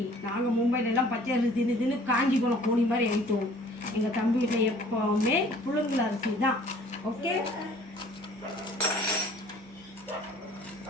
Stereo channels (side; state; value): both; normal; correlation 0.53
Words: நாங்கள் மும்பையில எல்லாம் பச்சை அரிசி தின்னு காஞ்சி போன கோணி மாதிரி ஆயிட்டோம். எங்கள் தம்பி வீட்டில் எப்பவுமே புழுங்கல் அரிசி தான். ஓகே,